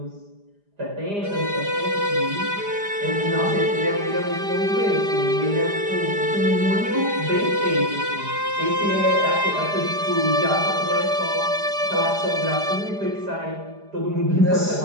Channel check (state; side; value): late; left; 4.9 ms